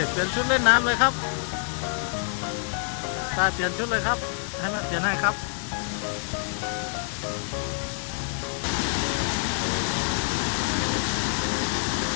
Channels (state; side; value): silent; right; digital silence